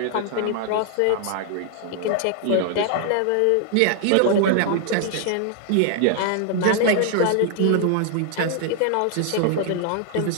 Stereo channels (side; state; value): both; different; correlation 0.00